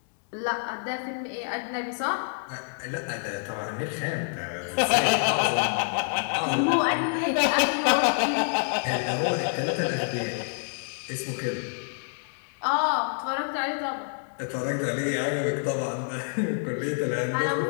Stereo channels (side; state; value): right; silent; digital silence